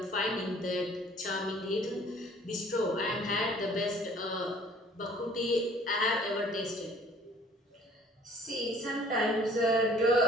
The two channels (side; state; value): both; normal; correlation 0.55